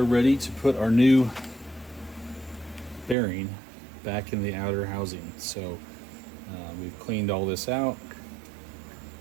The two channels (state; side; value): drops out; left; at 3.2 s